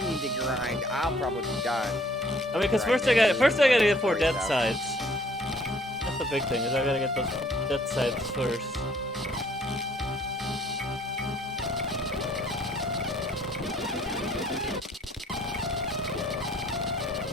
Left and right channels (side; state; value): both; normal; correlation 0.60